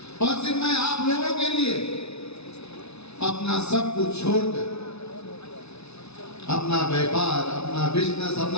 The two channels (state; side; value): late; right; 0.80 ms